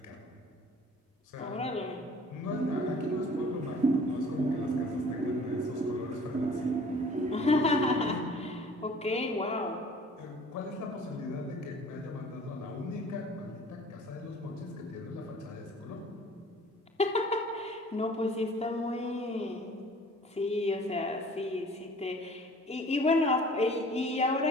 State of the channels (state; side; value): normal; both; correlation 0.49